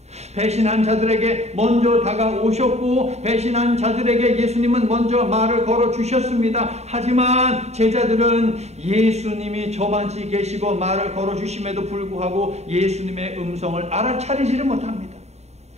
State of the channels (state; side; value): late; left; 0.32 ms